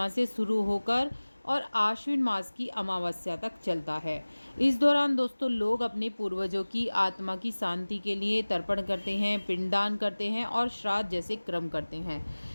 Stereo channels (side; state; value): both; inverted; correlation -1.00